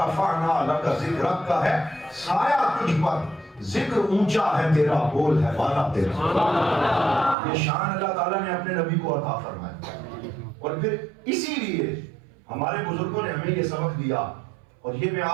لَكَ ذِكْرَكَ کا ہے سایہ تجھ پر، ذکر اونچا ہے تیرا، بول ہے بالا تیرا۔ یہ شان اللہ تعالیٰ نے اپنے نبی کو عطا فرمایا، اور پھر اسی لیے ہمارے بزرگوں نے ہمیں یہ سبق دیا، اور یہ میں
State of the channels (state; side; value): drops out; left; at 7.4 s